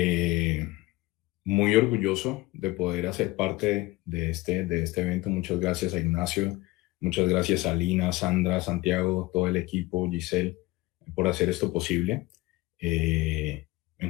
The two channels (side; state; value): right; quieter; 20.4 dB